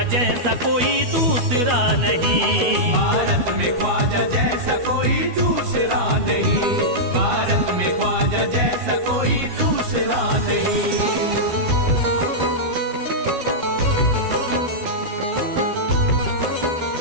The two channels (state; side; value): late; left; 12 ms